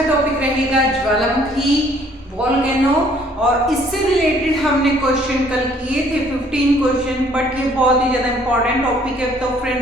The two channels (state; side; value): normal; both; correlation 0.60